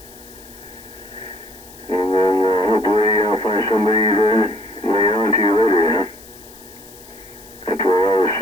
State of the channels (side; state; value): left; noise; hiss, 21 dB below the sound